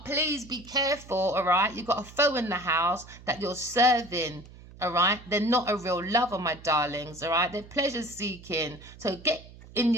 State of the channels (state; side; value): noise; right; hum, 19 dB below the sound